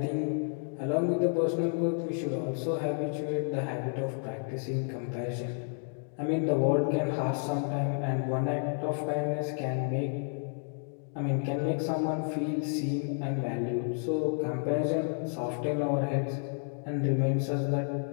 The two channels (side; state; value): right; silent; 57 dB below the other